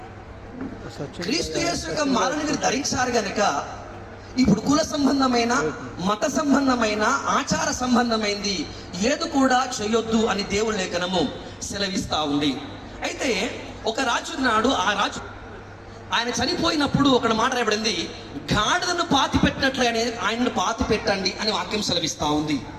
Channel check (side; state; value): both; identical; correlation 1.00